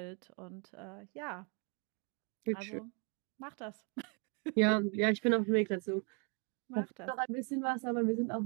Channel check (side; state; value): left; quieter; 36.4 dB